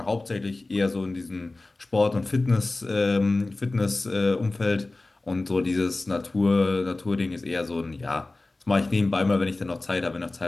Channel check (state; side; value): quieter; right; 3.1 dB